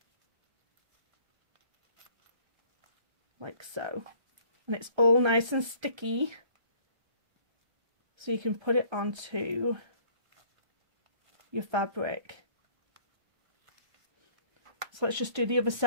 Like so. And it's all nice and sticky, so you can put it onto your fabric. So let's just do the other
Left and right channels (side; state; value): left; late; 1.3 ms